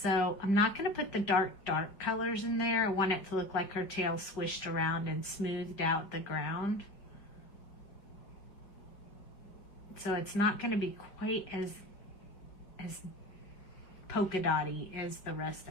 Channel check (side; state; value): right; late; 5.1 ms